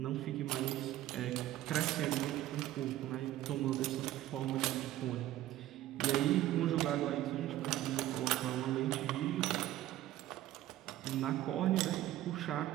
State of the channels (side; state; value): left; quieter; 14.2 dB